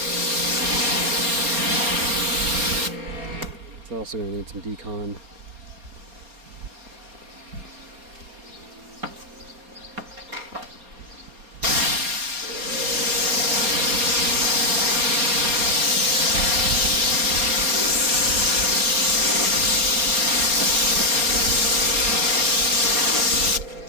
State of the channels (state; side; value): late; left; 4.3 ms